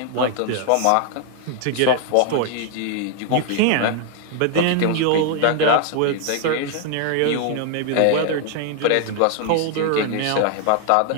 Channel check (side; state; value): both; different; correlation 0.00